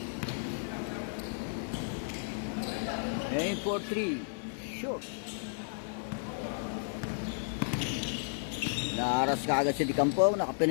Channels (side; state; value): right; silent; digital silence